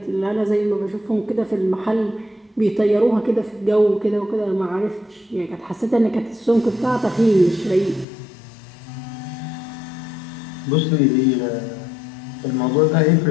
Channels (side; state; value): right; drops out; at 8.1 s